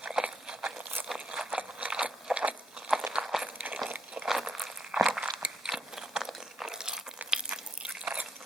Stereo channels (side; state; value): both; normal; correlation 0.75